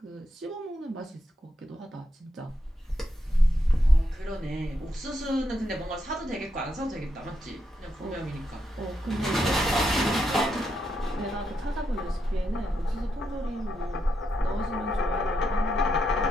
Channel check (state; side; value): normal; both; correlation 0.82